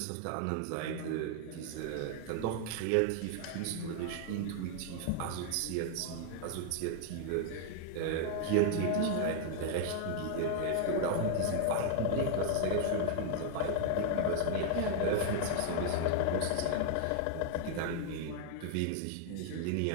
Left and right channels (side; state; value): both; different; correlation 0.00